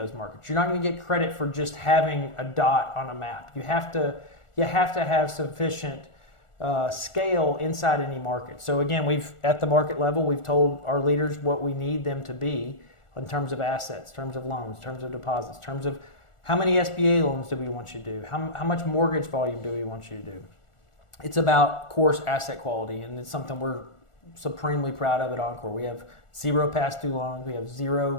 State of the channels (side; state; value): right; late; 1.4 ms